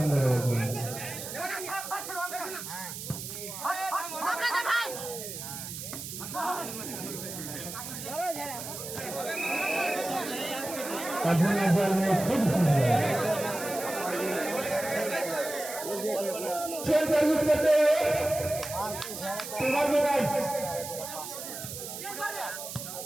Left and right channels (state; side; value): noise; right; hiss, 8 dB below the sound